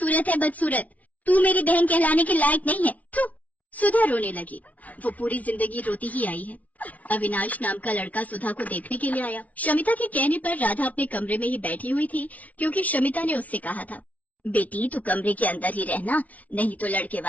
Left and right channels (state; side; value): late; right; 0.070 ms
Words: है बदसूरत, तू मेरी बहन कहलाने के लायक नहीं है। तू। सुधा रोने लगी। वो पूरी जिंदगी रोती ही आई है। अविनाश नाम का लड़का सुधा को देखने के लिए आया। शमिता के कहने पर राधा अपने कमरे में ही बैठी हुई थी, क्योंकि शमिता ने उससे कहा था, बेटी तू कमरे के अंदर ही रहना, नहीं तो लड़के